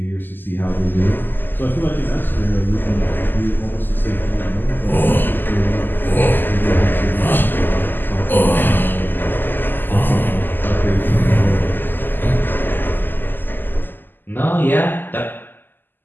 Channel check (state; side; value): late; right; 0.091 ms